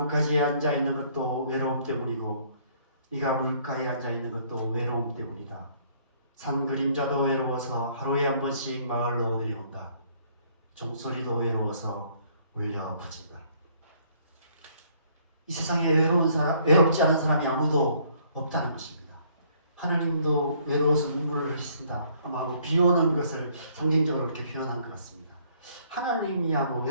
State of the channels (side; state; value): both; inverted; correlation -0.63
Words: 앉아있는 것도 외로움 때문이고 네가 물가에 앉아있는 것도 외로움 때문이다. 산 그림자도 외로워서 하루에 한 번씩 마을로 내려온다. 종소리도 외로워서 울려 퍼진다. 이 세상에 외롭지 않은 사람이 아무도 없다는 것입니다. 하나님도 외로워서 눈물을 흘리신다. 아마 비 오는 것을 상징적으로 이렇게 표현한 것 같습니다. 하나님이야